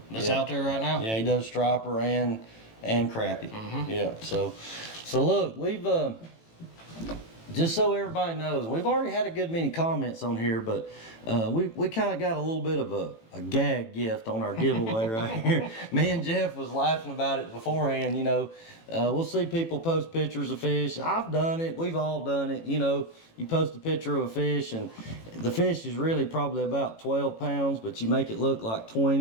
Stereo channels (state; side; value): late; right; 18 ms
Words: That's out there right now. Yeah, he does striper and crappie. Yeah, so look, we've just so everybody knows, we've already had a good many comments on here, but we kind of got a little bit of a gag gift on our giveaway right here. Me and Jeff was laughing about it beforehand. We'll see people post pictures of fish. I've done it. We've all done it. You post a picture of a fish, and the fish is really probably about 12 pounds, but you make it look like